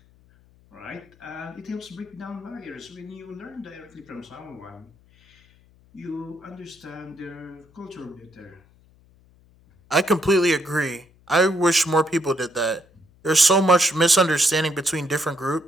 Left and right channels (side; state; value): left; noise; hum, 30 dB below the sound